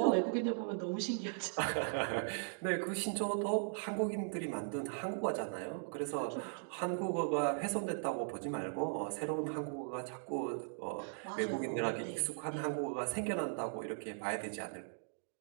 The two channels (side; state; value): left; silent; digital silence